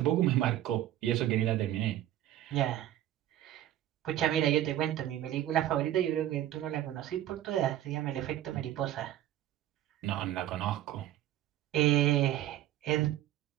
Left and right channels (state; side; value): quieter; left; 12.9 dB